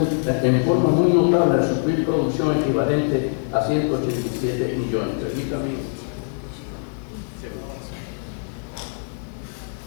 al suplir producción equivalente a 187 millones. Permítame.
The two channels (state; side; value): silent; right; digital silence